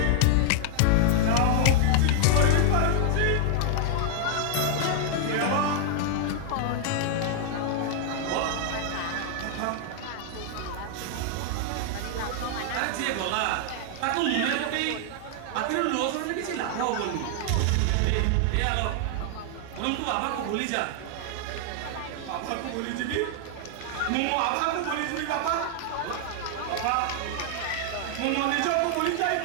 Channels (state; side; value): different; both; correlation 0.00